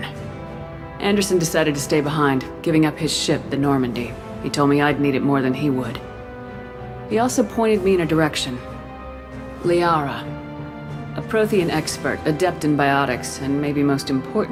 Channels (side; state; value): both; identical; correlation 1.00